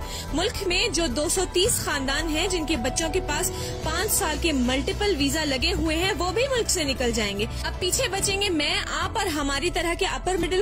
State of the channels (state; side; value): identical; both; correlation 1.00